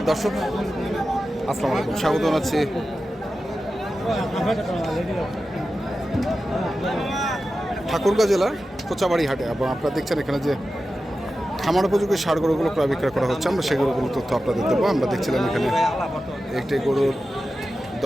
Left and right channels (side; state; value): both; normal; correlation 0.93